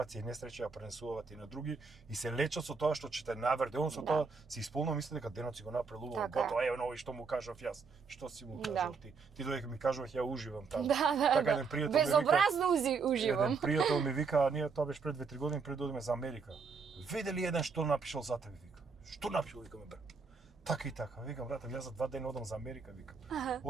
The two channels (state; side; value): quieter; left; 5.0 dB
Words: и несреќа ја пренесуваат и на други и се лечат со тоа што ќе те наврде, он со тоа се исполнува мисли дека денот си го направил убаво. Готово, ево нови што му кажав јас. Што си му кажав ти? Ти додека ми кажуваш ја уживам таму. Така еден пријател ми вика. Безобразно уживам. Еден пријател ми вика, ние тоа беше пред 2-3 години пред да одиме за Америка. Виде ли еден што напишал за тебе, вика. Што напишал, викаме брат. Така и така, викам брат, јас за 2 дена одам за Америка, викам.